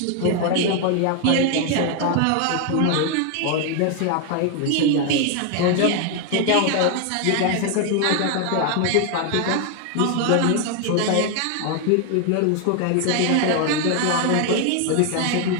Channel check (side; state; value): both; different; correlation 0.01